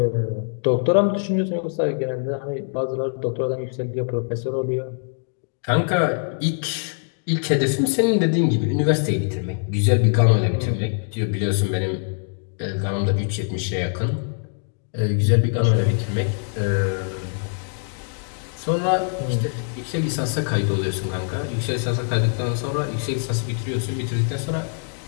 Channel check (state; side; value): silent; right; 63 dB below the other